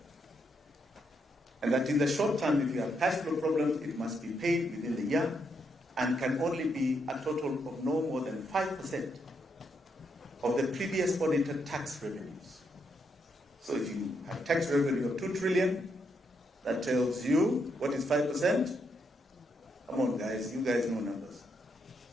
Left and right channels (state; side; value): normal; both; correlation 0.78